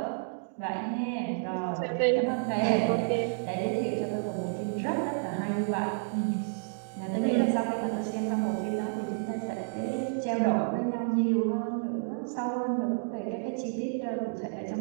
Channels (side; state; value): left; silent; digital silence